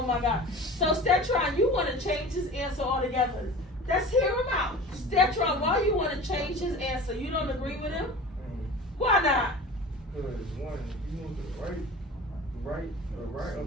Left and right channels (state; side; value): normal; both; correlation 0.37